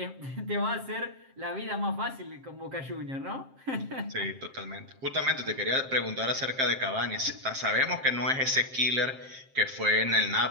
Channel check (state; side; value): late; left; 7.6 ms